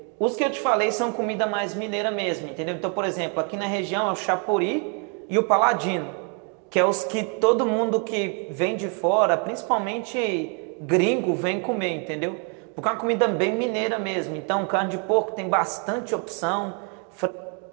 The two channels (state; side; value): quieter; left; 38.8 dB